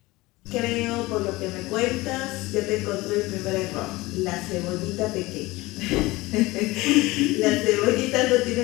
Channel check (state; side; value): quieter; right; 20.7 dB